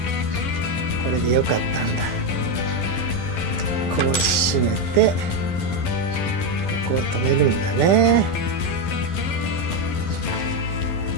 これでよかったんだ。こう締めてここを止めるんだね。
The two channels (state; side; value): late; right; 11 ms